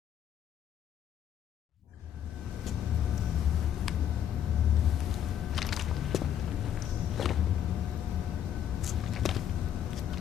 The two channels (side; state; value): right; quieter; 9.9 dB